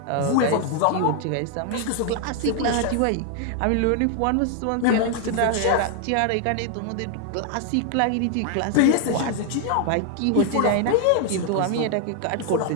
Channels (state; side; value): different; both; correlation 0.00